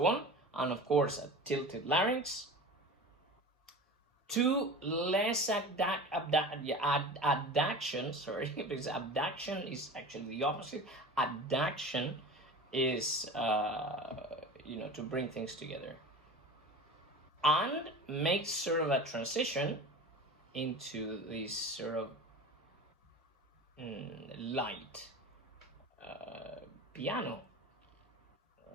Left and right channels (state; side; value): normal; both; correlation 0.34